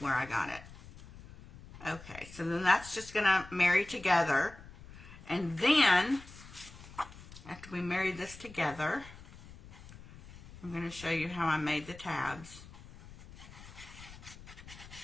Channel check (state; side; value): noise; left; rumble, 17 dB below the sound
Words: I got it. Okay, so then that's just going to marry together. And then, after we marry this together, I'm going to show you how I made the tabs.